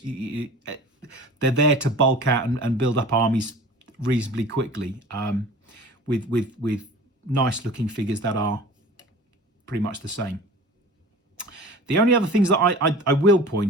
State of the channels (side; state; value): both; normal; correlation 0.41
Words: They're there to bulk out and build up armies reasonably quickly, with nice looking figures that are pretty much the same. The only other things that I will